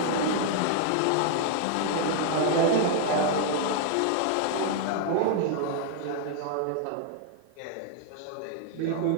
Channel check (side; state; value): both; different; correlation 0.00